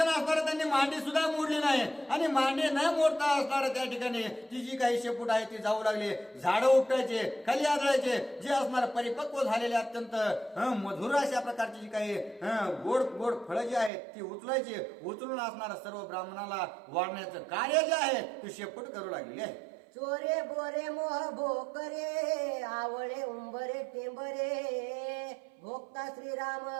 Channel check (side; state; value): left; drops out; at 13.9 s